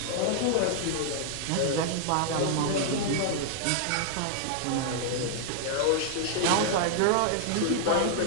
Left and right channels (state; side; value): different; both; correlation 0.00